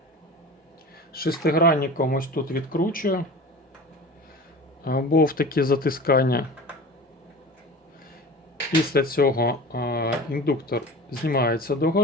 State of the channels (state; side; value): normal; both; correlation 0.35